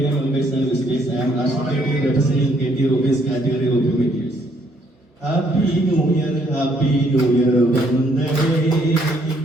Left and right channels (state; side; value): normal; both; correlation 0.68